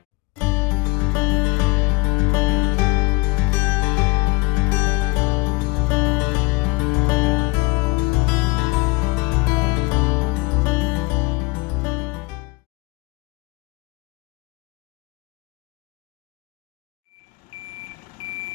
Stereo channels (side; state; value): right; quieter; 24.3 dB